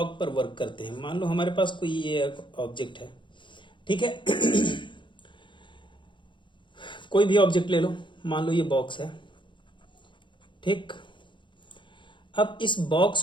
पर वर्क करते हैं। मान लो हमारे पास कोई ये ऑब्जेक्ट है, ठीक है? कोई भी ऑब्जेक्ट ले लो, मान लो ये बॉक्स है, ठीक। अब इस बॉक्स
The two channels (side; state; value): right; late; 0.23 ms